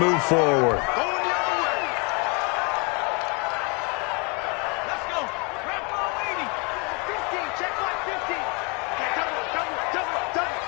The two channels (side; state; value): right; quieter; 30.6 dB